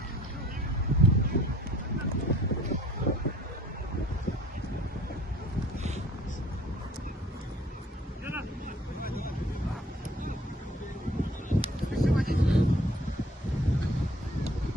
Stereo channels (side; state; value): both; normal; correlation 0.55